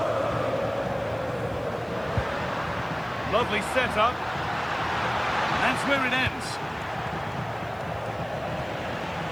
Lovely setup. That's where it ends.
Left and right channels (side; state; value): right; noise; hiss, 28 dB below the sound